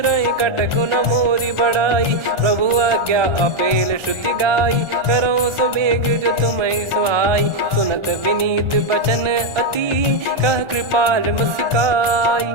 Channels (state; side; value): late; left; 1.4 ms